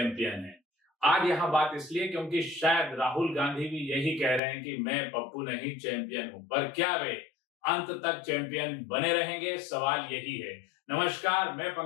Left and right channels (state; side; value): drops out; right; at 4.4 s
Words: है। आज यहाँ बात इसलिए क्योंकि शायद राहुल गांधी भी यही कह रहे हैं कि मैं पप्पू नहीं चैंपियन हूं, पर क्या वे अंत तक चैंपियन बने रहेंगे? सवाल यही है। नमस्कार, मैं